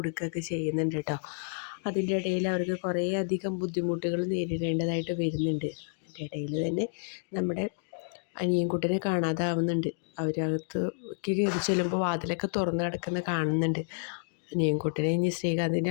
ചെയ്യുന്നുണ്ട് കേട്ടോ. അതിൻ്റെ ഇടയിൽ അവർക്ക് കുറേ അധികം ബുദ്ധിമുട്ടുകൾ നേരിടേണ്ടതായിട്ട് വരുന്നുണ്ട്. അതിൻ്റെ ഇടയിൽ തന്നെ നമ്മുടെ അനിയൻകുട്ടനെ കാണാതാവുന്നുണ്ട്. അവരകത്തേക്ക് കയറി ചെല്ലുമ്പോൾ വാതിലൊക്കെ തുറന്ന് കിടക്കുന്ന കാണുന്നുണ്ട്. അനിയൻകുട്ടനെ ഇനി ശ്രീകാന്തിൻ്റെ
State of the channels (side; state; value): right; silent; digital silence